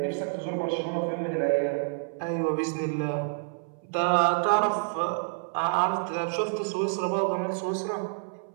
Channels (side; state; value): left; silent; 59 dB below the other